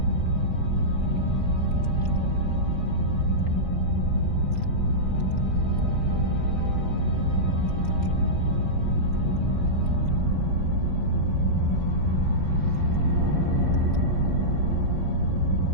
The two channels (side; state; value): left; late; 5.0 ms